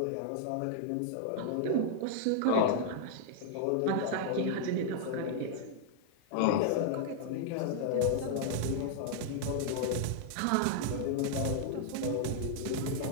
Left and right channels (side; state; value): both; different; correlation -0.01